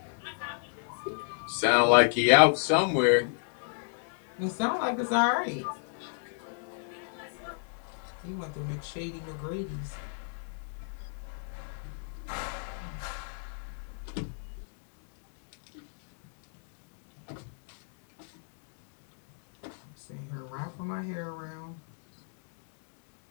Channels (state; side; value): silent; right; digital silence